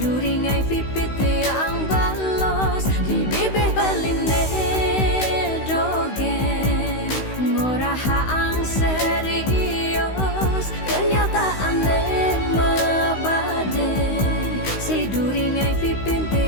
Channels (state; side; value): late; right; 16 ms